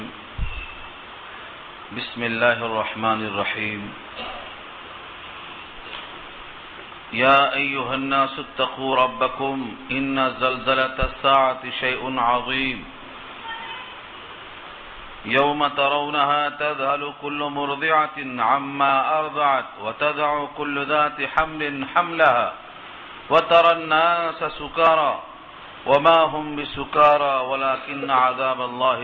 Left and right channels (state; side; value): identical; both; correlation 1.00